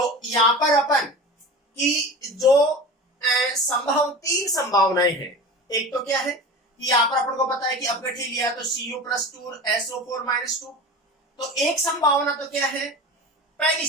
यहाँ पर अपन की जो तीन संभावनाएं हैं। एक तो क्या है कि यहाँ पर अपन को पता है कि अपघट्य लिया तो Cu+2 SO4-2। तो एक संभावना तो क्या है? पहली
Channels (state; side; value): normal; both; correlation 0.33